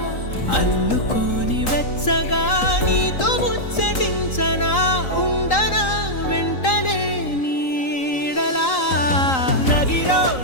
అల్లుకోని వెచ్చగా నీతో ముచ్చటించనా ఉండనా వెంటనే నీడలా నగిరో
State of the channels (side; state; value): right; late; 3.8 ms